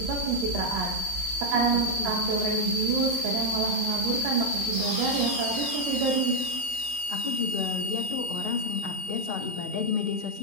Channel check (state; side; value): late; left; 20 ms